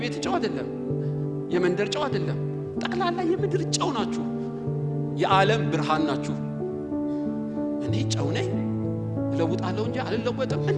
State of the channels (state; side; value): identical; both; correlation 1.00